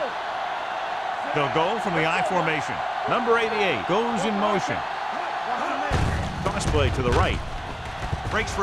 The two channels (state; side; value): identical; both; correlation 1.00